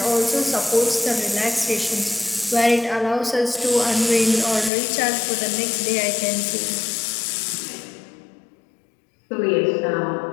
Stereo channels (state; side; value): drops out; right; at 4.7 s